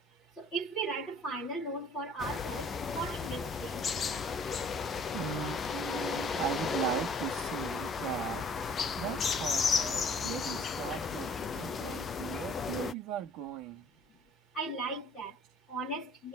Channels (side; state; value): both; normal; correlation 0.55